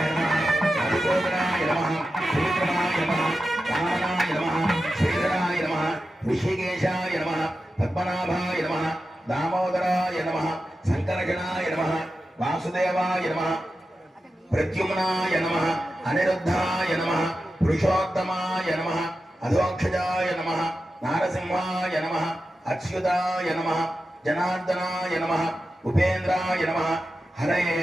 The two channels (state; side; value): normal; both; correlation 0.92